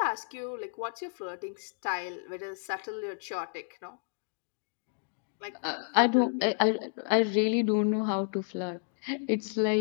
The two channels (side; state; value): right; silent; digital silence